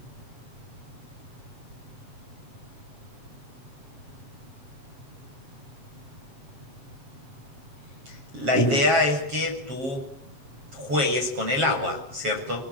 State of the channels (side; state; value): left; late; 7.5 ms